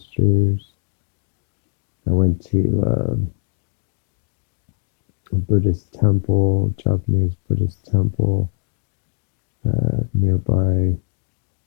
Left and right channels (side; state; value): right; silent; digital silence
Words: I went to a Buddhist temple, Japanese Buddhist temple, nearby,